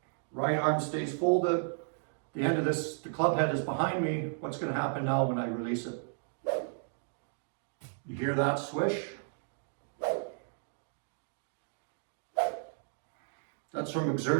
Right arm stays folded. The end of this, the club head is behind me. What's going to happen now when I release it? You hear that swish? That's from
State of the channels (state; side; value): silent; left; digital silence